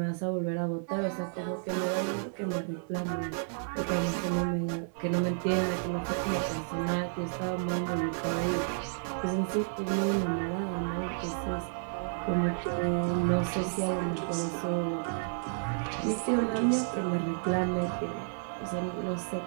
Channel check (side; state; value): left; silent; 55 dB below the other